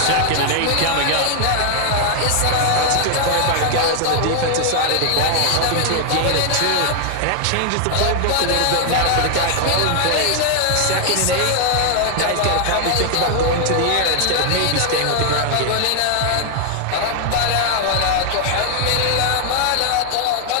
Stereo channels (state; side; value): different; both; correlation 0.00